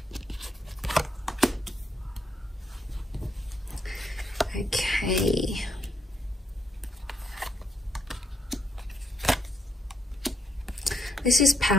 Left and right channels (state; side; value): normal; both; correlation 0.78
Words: Okay. This is